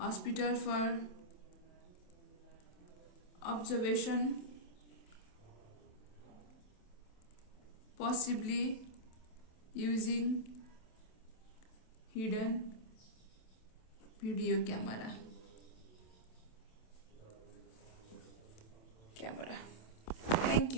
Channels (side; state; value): right; late; 27 ms